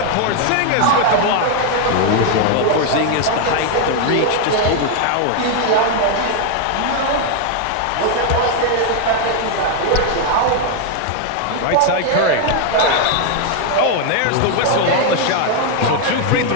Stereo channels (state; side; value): different; both; correlation 0.00